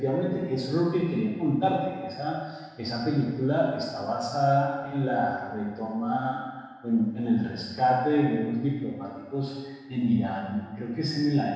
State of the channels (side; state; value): both; identical; correlation 1.00